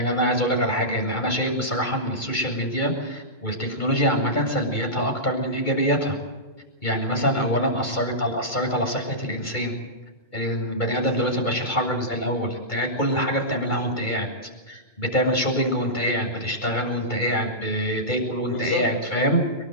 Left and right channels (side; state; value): right; late; 2.2 ms